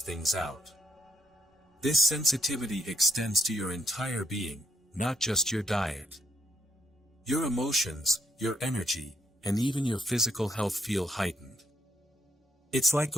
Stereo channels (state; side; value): normal; both; correlation 0.75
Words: out. This sensitivity extends to your entire being, not just your diet. Your emotions, your energy, and even your physical health feel heightened. It's like